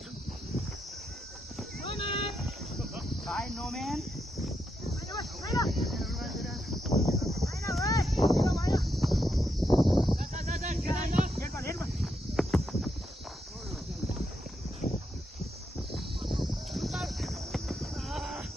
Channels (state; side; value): normal; both; correlation 0.82